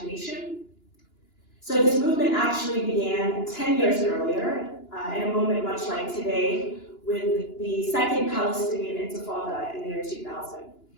So this movement actually began 10 years earlier, in a moment much like today, with the Second Palestinian Intifada in the year 2000.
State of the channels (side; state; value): right; late; 2.9 ms